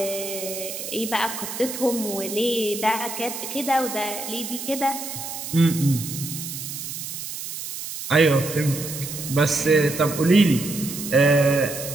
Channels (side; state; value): right; noise; hiss, 8 dB below the sound